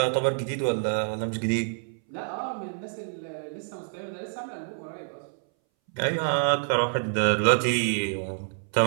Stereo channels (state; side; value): silent; left; 60 dB below the other